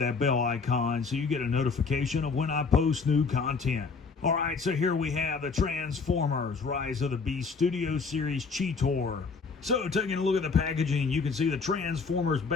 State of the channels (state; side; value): quieter; right; 4.8 dB